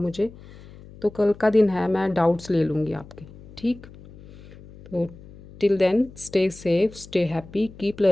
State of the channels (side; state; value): left; noise; hum, 19 dB below the sound